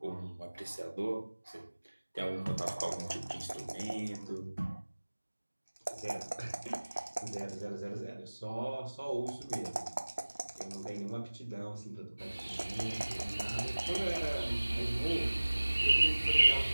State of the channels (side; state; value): both; inverted; correlation -1.00